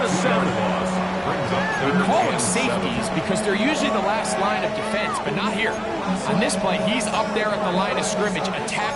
they're usually the last line of defense, but not here. On this play, he's up there at the line of scrimmage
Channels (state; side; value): identical; both; correlation 1.00